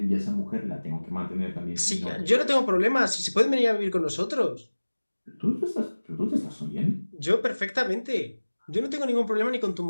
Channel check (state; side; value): inverted; both; correlation -1.00